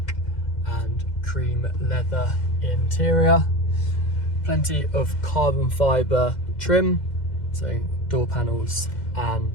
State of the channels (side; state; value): right; late; 2.1 ms